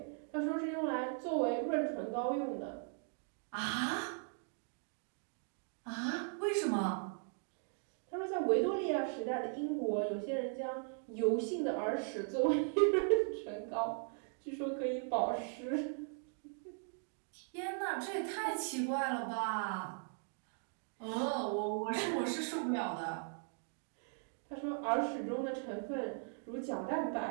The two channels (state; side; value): silent; left; 52 dB below the other